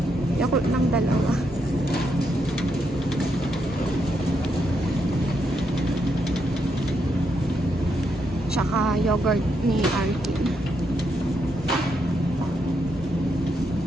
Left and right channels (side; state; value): both; normal; correlation 0.79